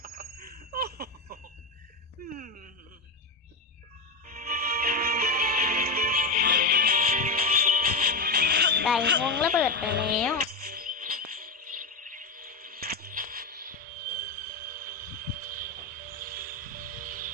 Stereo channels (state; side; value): quieter; right; 3.7 dB